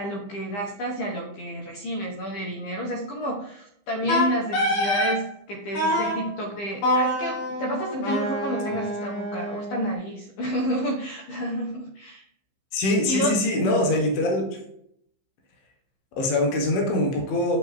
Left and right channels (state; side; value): late; right; 15 ms